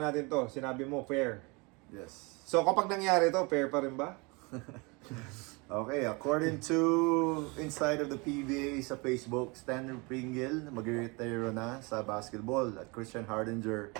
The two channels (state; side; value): quieter; left; 28.3 dB